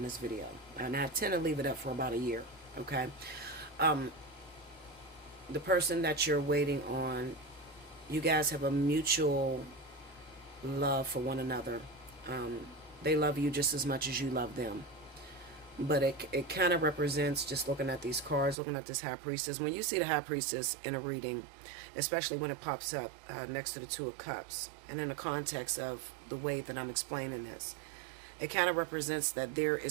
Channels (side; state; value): left; drops out; at 18.6 s